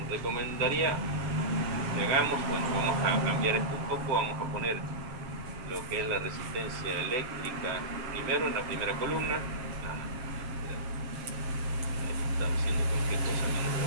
recomendaría que hagamos, bueno, vamos a cambiar esto un poco, vamos a poner lo que es la resistencia eléctrica primero en la primera columna. Estaba haciendo cualquier cosa menos lo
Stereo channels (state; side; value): late; left; 7.4 ms